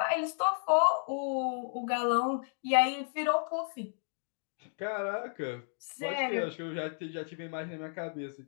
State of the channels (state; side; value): silent; right; digital silence